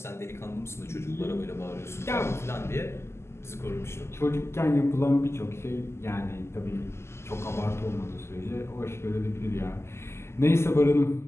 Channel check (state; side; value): late; right; 0.13 ms